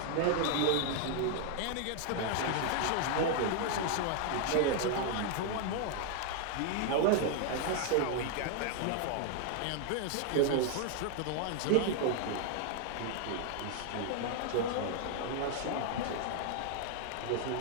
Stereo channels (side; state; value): both; different; correlation 0.00